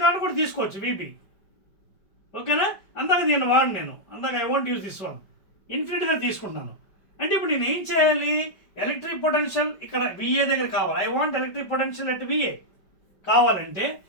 కాదు కూడా తీసుకోవచ్చు, VB. ఓకేనా? అందాక దీన్ని నేను I want use this one, ఇన్ఫినిటీగా తీసుకుంటాను. అంటే ఇప్పుడు నేను ఏం చేయాలి, ఎలక్ట్రిక్ పొటెన్షియల్ ఇక్కడ VA దగ్గర కావాలి. I want electric potential at VA కావాలంటే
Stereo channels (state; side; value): late; right; 5.1 ms